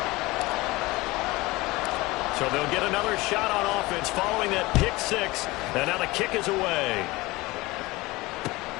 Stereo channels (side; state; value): right; quieter; 21.4 dB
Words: So they'll get another shot on offense following that pick-6. And now the kick is away.